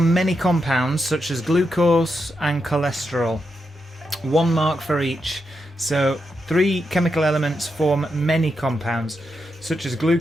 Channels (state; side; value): normal; both; correlation 0.85